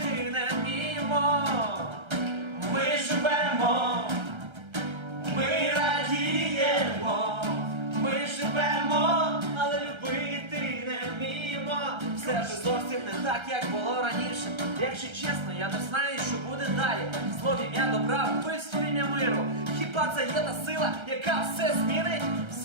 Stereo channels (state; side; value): late; left; 1.3 ms